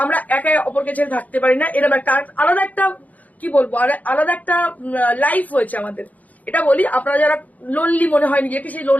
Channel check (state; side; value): late; right; 0.076 ms